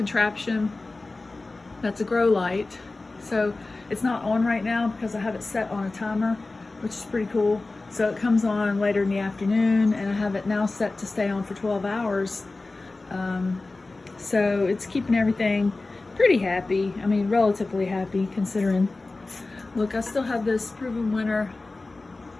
that's a grow light. So it's not on right now because I have it set on a timer, which is pretty cool. So it comes on later in the afternoon, and I have it now set to stay on for 12 hours. So it's keeping everything pretty happy. I mean, relatively happy considering. Look, I still have this proven winter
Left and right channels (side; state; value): right; quieter; 3.3 dB